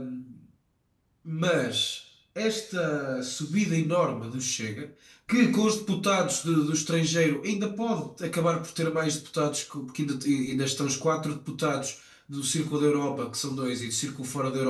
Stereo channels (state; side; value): identical; both; correlation 1.00